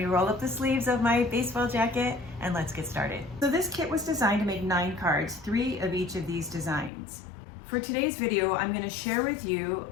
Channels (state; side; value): drops out; right; at 6.9 s